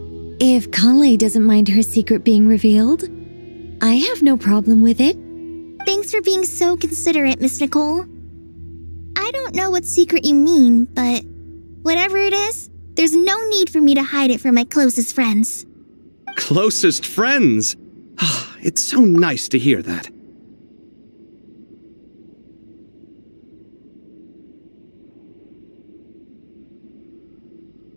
if Kale doesn't mind her secret being revealed, I have no problem with it. Thanks for being so considerate, Miss Nicole. I don't know what secret you mean, but whatever it is, there's no need for me to hide it from my closest friends. Closest friends? It's so nice to hear that.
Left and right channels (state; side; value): inverted; both; correlation -1.00